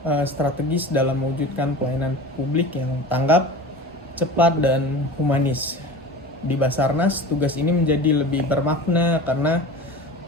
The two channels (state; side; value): normal; both; correlation 0.35